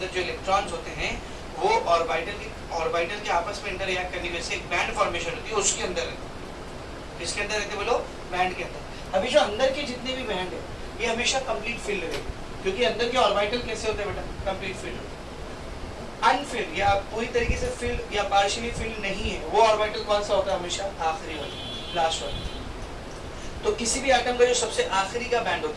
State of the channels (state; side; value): identical; both; correlation 1.00